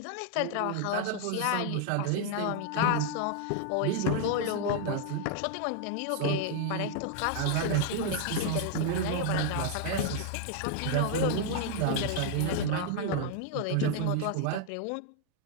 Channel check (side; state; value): both; different; correlation 0.00